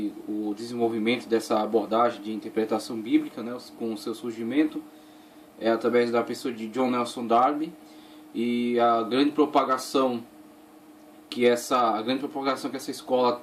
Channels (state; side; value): identical; both; correlation 1.00